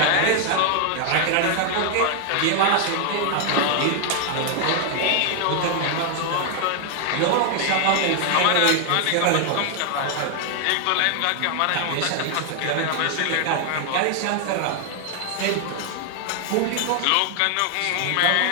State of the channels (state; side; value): different; both; correlation 0.00